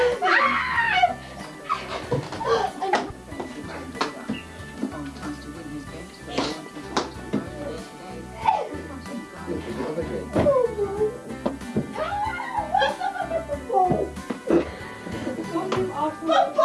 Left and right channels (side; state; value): both; identical; correlation 1.00